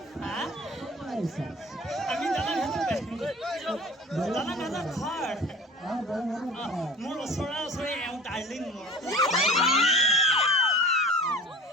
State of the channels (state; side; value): normal; both; correlation 0.41